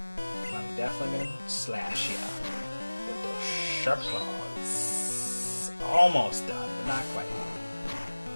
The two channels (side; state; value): both; inverted; correlation -1.00